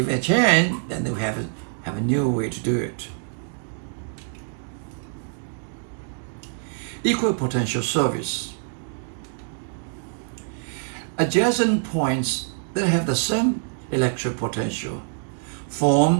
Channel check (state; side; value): silent; left; digital silence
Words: it change, then we have a new way to do it. Equipotential surface. Adjacent points that have the same electric potential